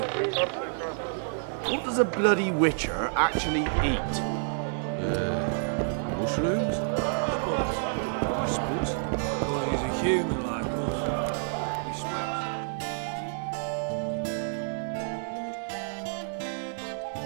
What does a bloody witcher actually eat? Mushrooms? I suppose. Well, he's a human like us. He smells.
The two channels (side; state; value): left; silent; 59 dB below the other